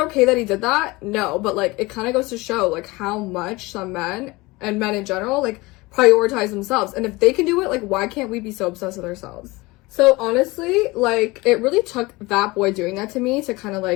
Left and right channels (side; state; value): right; quieter; 22.3 dB